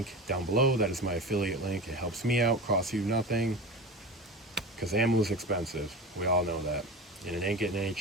down below, that is my affiliate link. It helps me out, costs you nothing, because ammo is expensive. We all know that, and it ain't getting any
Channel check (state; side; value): normal; both; correlation 0.29